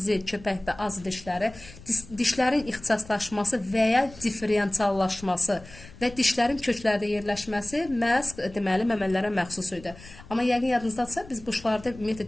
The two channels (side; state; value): left; noise; rumble, 19 dB below the sound